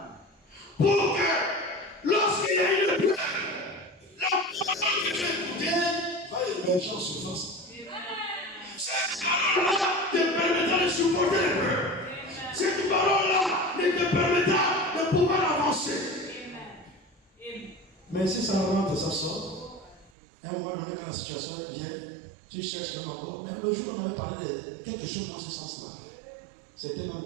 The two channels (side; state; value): left; drops out; at 20.1 s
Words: Pour que, lorsqu'il y a une peur, la parole que tu as écoutée Va émerger en surface. cette parole-là te permettra de supporter les peurs. Cette parole-là te permettra de pouvoir avancer. Mais si ça rentre, ça sort. À un moment donné, quand la situation vient, tu cherches même encore. Mais le jour, on avait parlé de quelque chose dans ce sens-là. C'était même